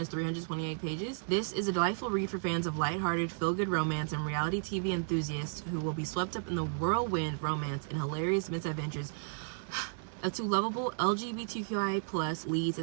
328 pages. This is a delightful read for fans of lighthearted, feel-good romance and reality TV enthusiasts who will be swept up in the whirlwind romance and hilarious misadventures of 2 lovable LGBTQIA+ leads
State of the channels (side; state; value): left; silent; 55 dB below the other